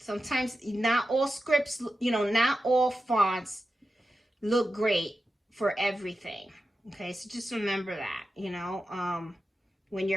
not all scripts, you know, not all fonts look great for everything. Okay, so just remember that, you know, when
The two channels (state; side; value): normal; both; correlation 0.91